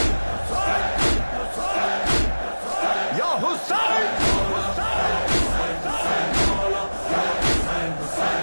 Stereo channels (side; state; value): both; inverted; correlation -1.00